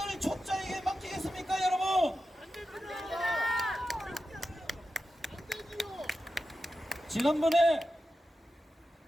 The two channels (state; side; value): normal; both; correlation 0.91